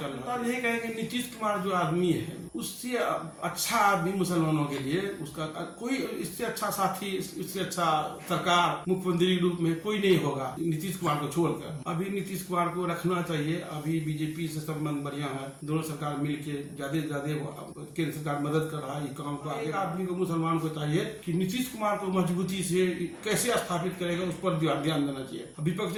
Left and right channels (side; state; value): both; identical; correlation 1.00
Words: रहा है। यही कहेंगे नीतीश कुमार जो आदमी है, उससे अच्छा आदमी मुसलमानों के लिए उसका कोई, इससे अच्छा साथी, इससे अच्छा सरकार मुख्यमंत्री के रूप में कोई नहीं होगा नीतीश कुमार को छोड़कर। अभी नीतीश कुमार को रखना चाहिए। अभी बीजेपी से संबंध बढ़िया है, दोनों सरकार मिलकर ज्यादा केंद्र सरकार मदद कर रहा है ये काम को आगे। आदमी को, मुसलमान को चाहिए कि नीतीश कुमार को मजबूती से कैसे स्थापित करेगा उस पर ध्यान देना चाहिए। विपक्ष